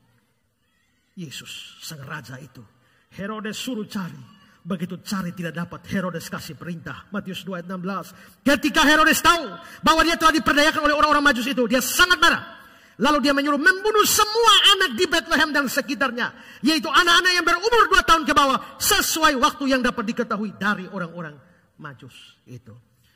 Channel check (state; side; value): identical; both; correlation 1.00